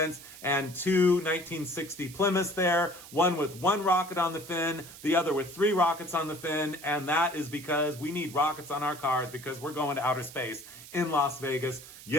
and two 1960 Plymouths there, one with one rocket on the fin, the other with three rockets on the fin, and that is because we need rockets on our cars because we're going to outer space in Las Vegas.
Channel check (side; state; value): right; noise; hiss, 17 dB below the sound